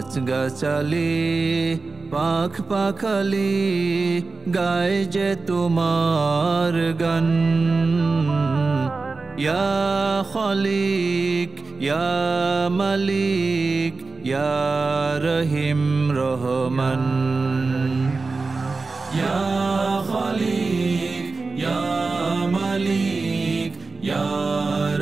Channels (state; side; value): quieter; left; 4.0 dB